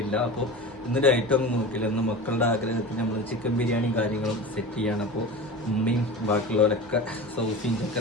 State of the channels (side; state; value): both; normal; correlation 0.31